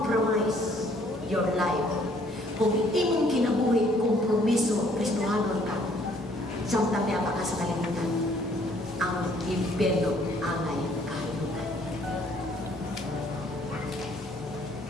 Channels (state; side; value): normal; both; correlation 0.62